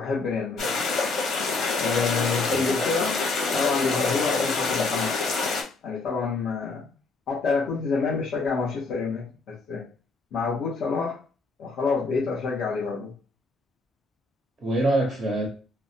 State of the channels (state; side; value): quieter; right; 3.4 dB